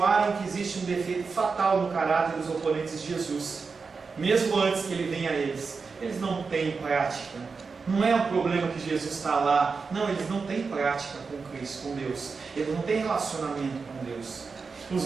que existe um defeito fatal no caráter dos oponentes de Jesus, mesmo antes que ele venha a eles. Eles não têm prática Não é um problema que Jesus está lá. Não, eles não têm prática com Cristo, com Deus. Eles não têm relacionamento com Deus. Os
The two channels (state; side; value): quieter; left; 4.8 dB